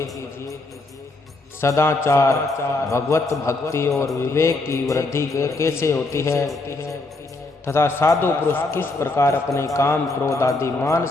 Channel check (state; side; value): quieter; right; 3.2 dB